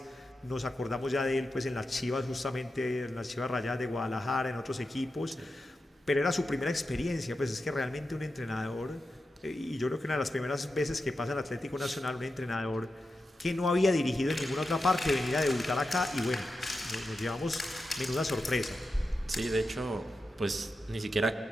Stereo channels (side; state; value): both; normal; correlation 0.90